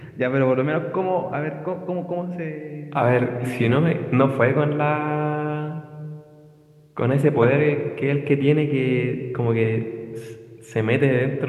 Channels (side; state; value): both; identical; correlation 1.00